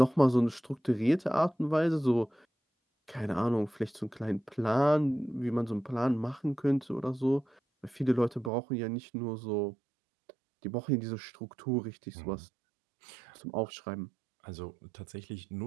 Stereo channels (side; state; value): left; drops out; at 8.5 s